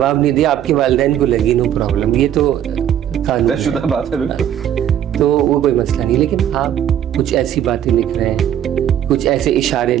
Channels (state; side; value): quieter; left; 10.5 dB